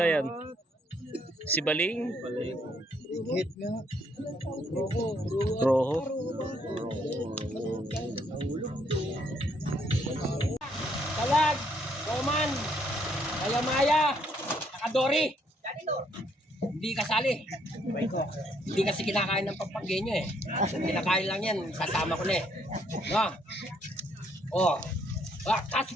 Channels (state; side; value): normal; both; correlation 0.70